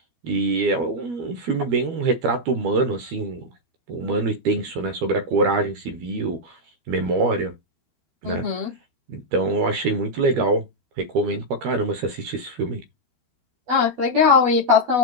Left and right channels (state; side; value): late; left; 12 ms